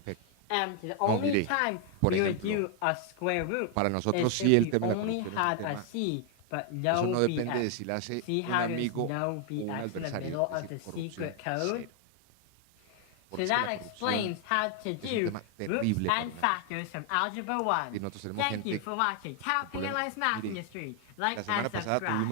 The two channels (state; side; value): different; both; correlation 0.00